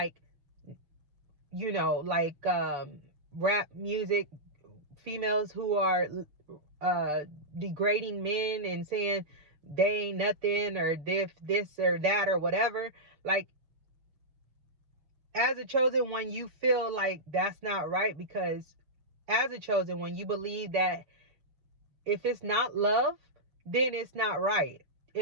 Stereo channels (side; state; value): left; late; 6.7 ms